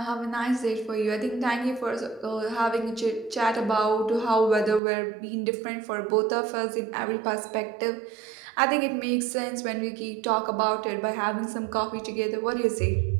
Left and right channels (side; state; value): left; drops out; at 4.8 s